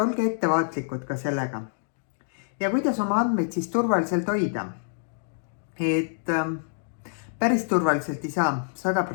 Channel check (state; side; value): silent; right; digital silence